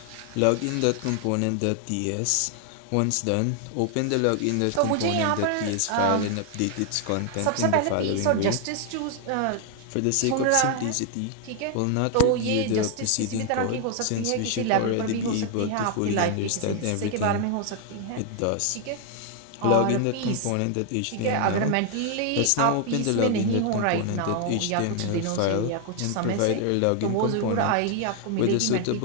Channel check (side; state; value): both; different; correlation 0.00